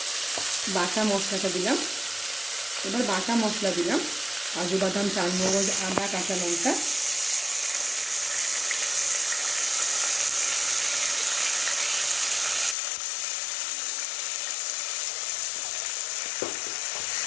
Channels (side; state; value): right; drops out; at 12.8 s